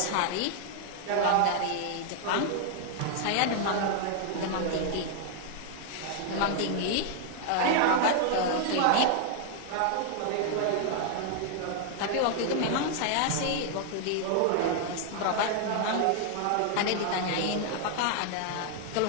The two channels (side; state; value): both; different; correlation 0.00